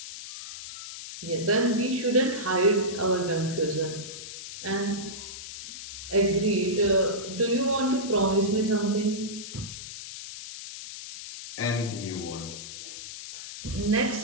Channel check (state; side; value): noise; left; hiss, 10 dB below the sound